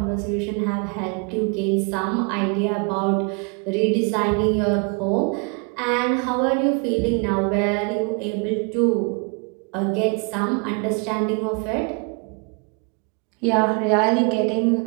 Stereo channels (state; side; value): quieter; left; 33.8 dB